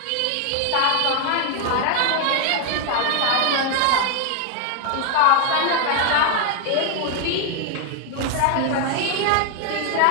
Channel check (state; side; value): different; both; correlation 0.00